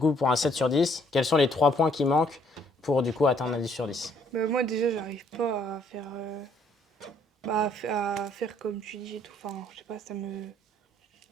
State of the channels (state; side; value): normal; both; correlation 0.65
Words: pour un 7 sur 10, quels sont les 3 points qui manquent pour, du coup, atteindre un 10 sur 10? Bah, moi, déjà, j'arrive pas à faire. Bah, à faire comme tu dis et tout. Enfin, je sais pas, ça me.